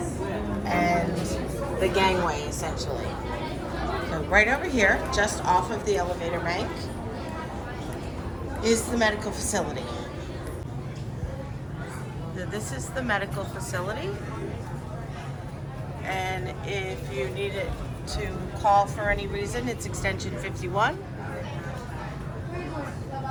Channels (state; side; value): identical; both; correlation 1.00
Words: and the gangway, essentially. So right over here, just off of the elevator bank, is the medical facility. So this is the medical facility, and if you need it to call for any reason, it's extension 51.